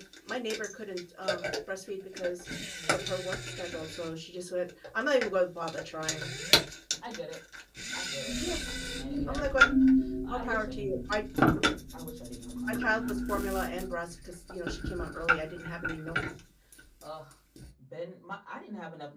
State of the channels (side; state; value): both; identical; correlation 1.00